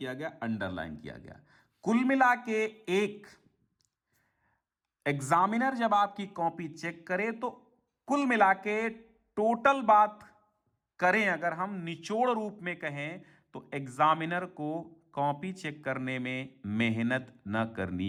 गया, अंडरलाइन किया गया। कुल मिला के एक एग्जामिनर जब आपकी कॉपी चेक करे तो कुल मिला के टोटल बात करें, अगर हम निचोड़ रूप में कहें तो एग्जामिनर को कॉपी चेक करने में मेहनत न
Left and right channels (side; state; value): both; identical; correlation 1.00